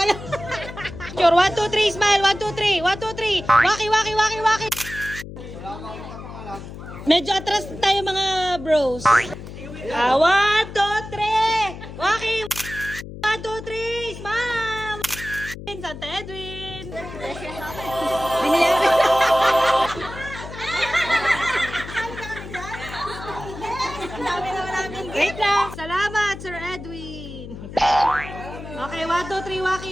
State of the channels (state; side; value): noise; left; hum, 12 dB below the sound